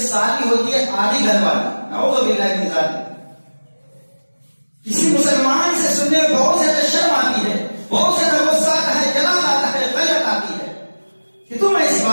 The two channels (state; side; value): inverted; both; correlation -1.00